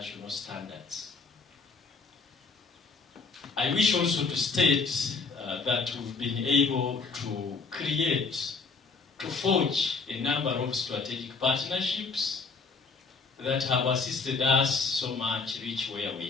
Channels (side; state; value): right; quieter; 4.5 dB